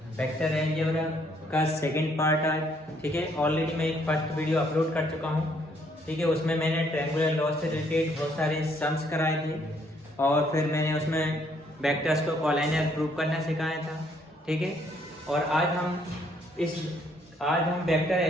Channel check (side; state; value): both; normal; correlation 0.68